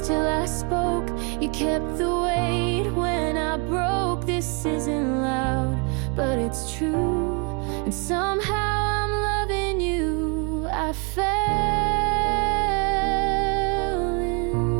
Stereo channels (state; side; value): quieter; left; 33.2 dB